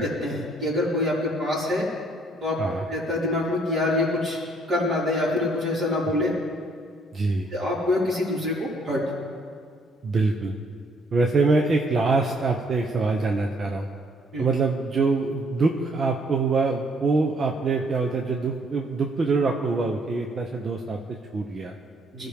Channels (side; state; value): both; normal; correlation 0.65